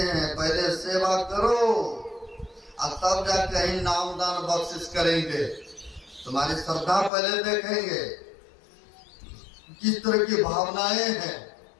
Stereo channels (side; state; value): right; drops out; at 7.1 s